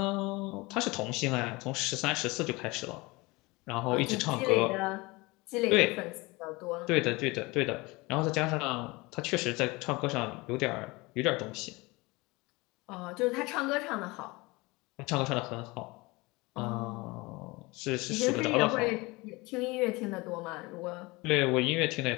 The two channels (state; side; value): quieter; right; 23.7 dB